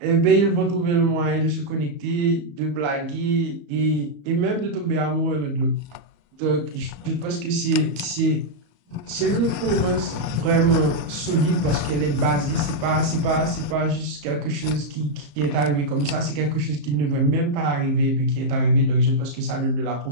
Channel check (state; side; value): late; left; 34 ms